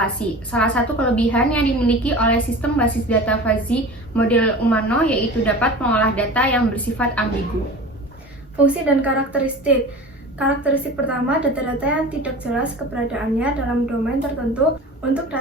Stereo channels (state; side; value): normal; both; correlation 0.36